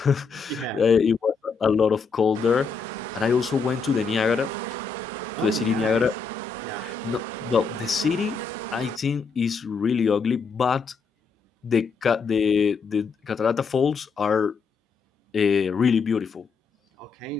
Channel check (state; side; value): quieter; right; 5.1 dB